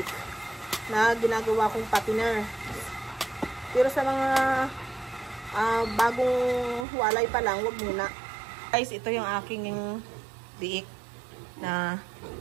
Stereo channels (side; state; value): left; drops out; at 6.9 s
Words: na ginagawa kong patiner. Pero sa mga bagong walay pa lang, wag muna. Guys, ito yung aking biik na